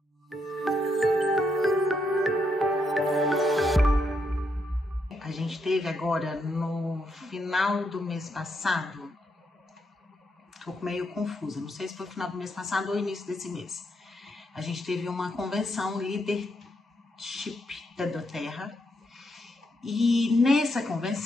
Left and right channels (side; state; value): both; normal; correlation 0.79